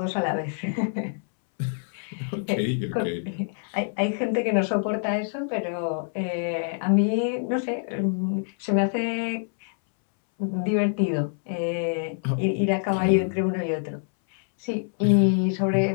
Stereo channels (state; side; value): silent; right; 61 dB below the other